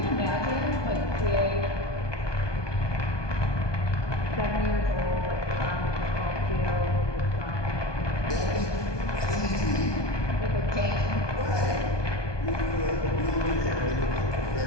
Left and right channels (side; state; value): right; late; 1.2 ms